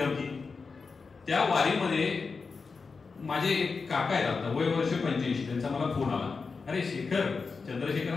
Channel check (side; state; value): right; quieter; 4.7 dB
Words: त्या वारीमध्ये माझे एक काका आहेत, आता वय वर्ष 85, त्यांचा मला फोन आला. अरे शेखर, चंद्रशेखर